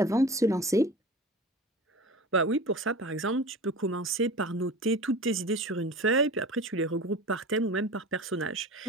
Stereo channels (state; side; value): normal; both; correlation 0.35